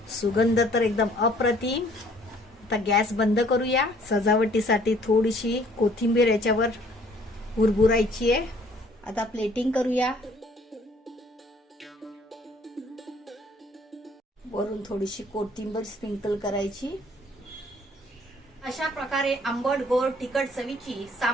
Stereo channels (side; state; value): both; normal; correlation 0.59